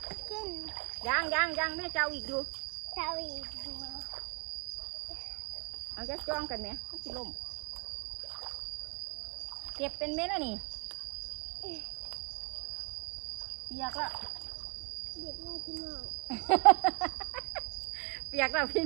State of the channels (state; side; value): quieter; left; 31.2 dB